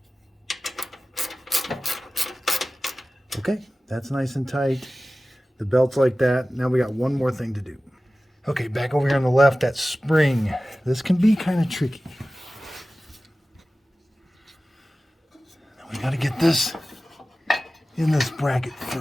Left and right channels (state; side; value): normal; both; correlation 0.96